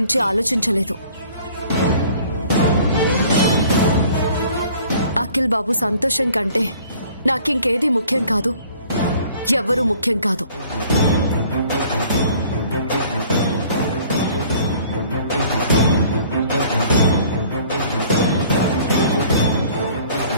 ఆలోచించలేదు. అఖిల్ బాబు సంతోషం కంటే నాకింకేది ముఖ్యం కాదు, ఎవ్వరూ ముఖ్యం కాదు.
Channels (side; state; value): both; inverted; correlation -0.53